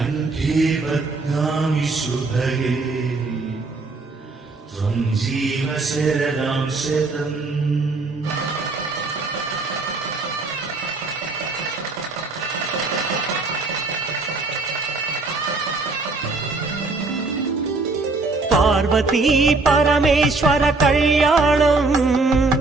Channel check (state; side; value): quieter; left; 3.6 dB